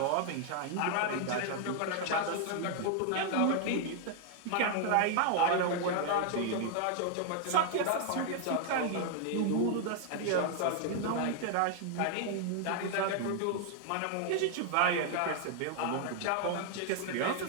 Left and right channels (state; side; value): different; both; correlation 0.00